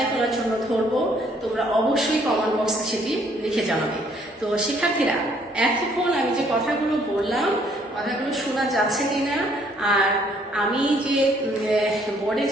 করার জন্য ধরবো। তোমরা অবশ্যই কমেন্ট বক্সে সেটি লিখে জানাবে। তো শিক্ষার্থীরা, এতক্ষণ আমি যে কথাগুলো বললাম, কথাগুলো শোনা যাচ্ছে কিনা, আর আমি যে বোর্ডে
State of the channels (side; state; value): both; normal; correlation 0.64